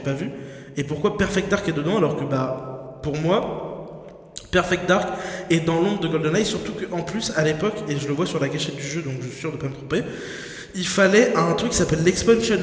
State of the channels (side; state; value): both; identical; correlation 1.00